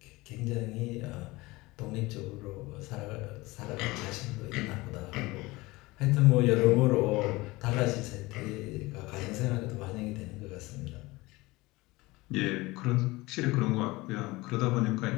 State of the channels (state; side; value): quieter; right; 21.4 dB